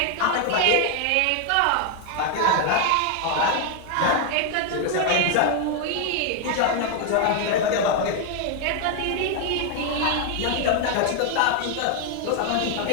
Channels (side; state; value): both; different; correlation 0.00